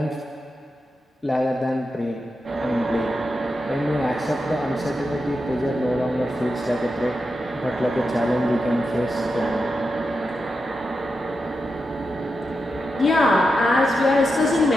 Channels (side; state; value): both; normal; correlation 0.88